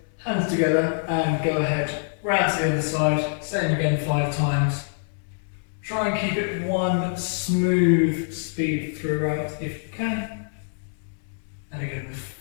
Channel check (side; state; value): right; silent; digital silence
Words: hands together, and go ahead, round to the other side, same again 5 times. Try and keep it one smooth speed throughout if you can. And again,